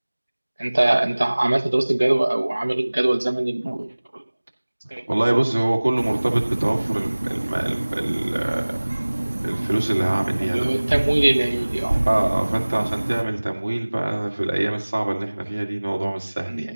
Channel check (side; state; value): both; inverted; correlation -1.00